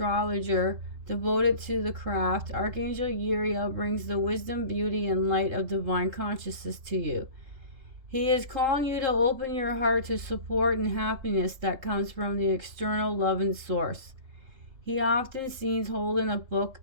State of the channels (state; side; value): late; left; 3.3 ms